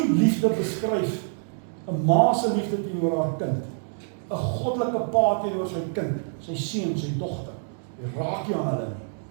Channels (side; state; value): left; silent; digital silence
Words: liefde beskryf, 'n ma se liefde teenoor haar kind, 'n goddelike pa teenoor sy kind, sy seun, sy dogter. Jy raak nie aan hulle nie.